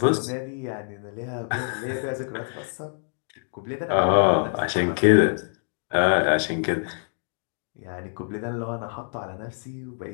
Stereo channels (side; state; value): right; silent; digital silence